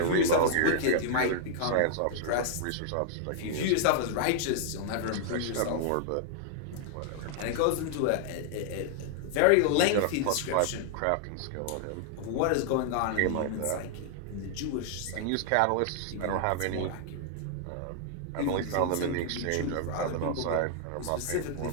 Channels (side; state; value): both; different; correlation 0.00